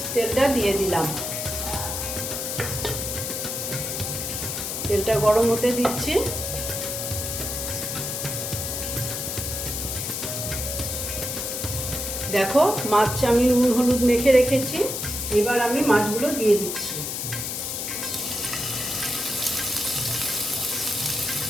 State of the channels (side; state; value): left; noise; hiss, 3 dB below the sound